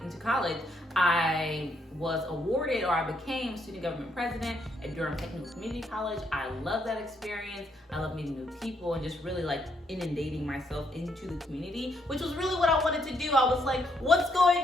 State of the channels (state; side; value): normal; both; correlation 0.74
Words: college, I was awarded, or I became student government president at Durham Technical Community College. I love that experience. I love meeting new people and just really like inundating myself into the community, which was really what I wanted to do. I was like, what's